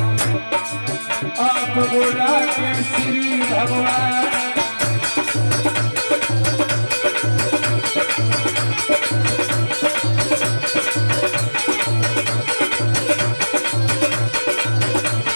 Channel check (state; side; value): inverted; both; correlation -1.00